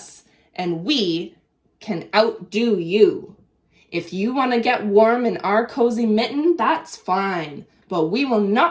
and we can outdo you. If you want to get warm in our cozy mitten, that's fine, but we will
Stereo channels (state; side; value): identical; both; correlation 1.00